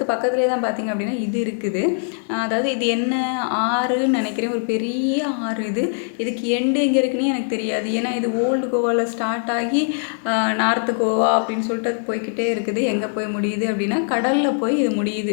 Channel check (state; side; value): silent; right; digital silence